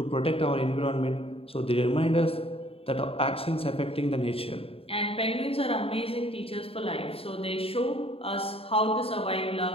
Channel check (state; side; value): late; right; 0.27 ms